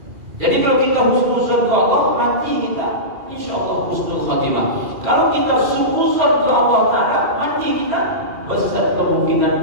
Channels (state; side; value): late; left; 2.4 ms